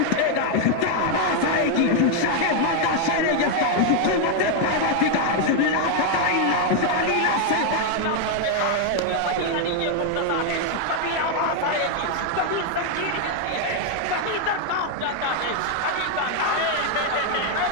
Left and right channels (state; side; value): different; both; correlation 0.01